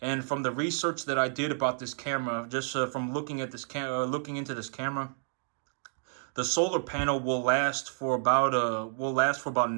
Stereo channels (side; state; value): left; silent; digital silence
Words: from the research that I did about this camera, just from looking at looking into this camera, the solar panel will last for about